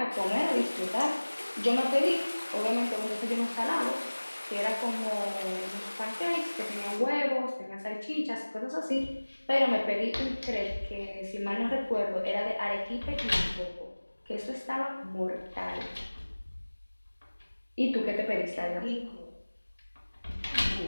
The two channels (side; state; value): both; inverted; correlation -1.00